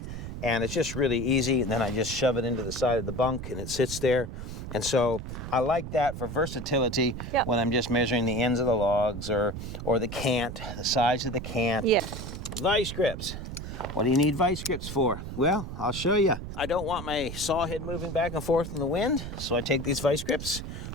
And it's just really easy, and then I just shove it into the side of the bunk and it sits there. And so I like that for versatility when I'm just measuring the ends of the logs or the cant, the size of the cant. Yeah. Vice grips. What do you need vice grips for? Well, I'll show you. I don't want my saw head moving back and forth in the wind, so I take these vice grips,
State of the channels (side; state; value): right; noise; rumble, 8 dB below the sound